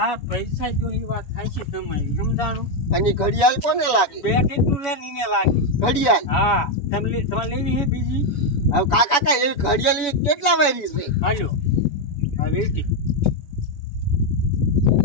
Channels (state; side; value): late; right; 7.0 ms